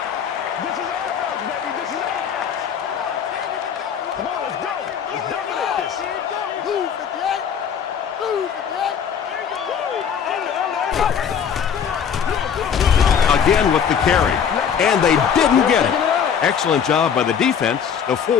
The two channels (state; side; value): quieter; right; 7.6 dB